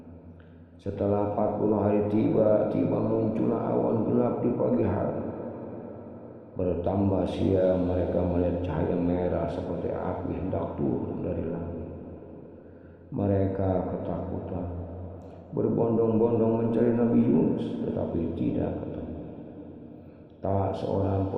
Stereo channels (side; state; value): both; identical; correlation 1.00